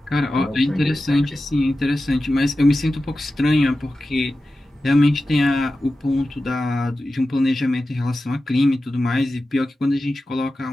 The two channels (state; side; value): normal; both; correlation 0.93